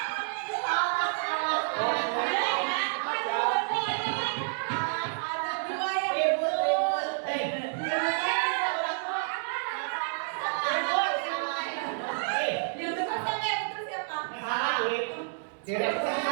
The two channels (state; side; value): silent; left; digital silence